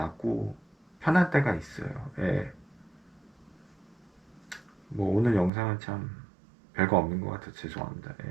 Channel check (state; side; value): drops out; left; at 5.5 s